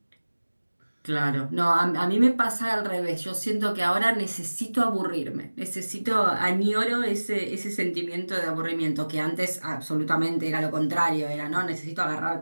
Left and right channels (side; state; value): both; inverted; correlation -1.00